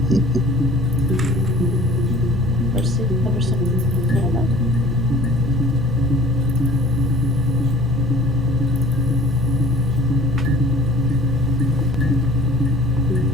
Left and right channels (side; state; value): both; normal; correlation 0.48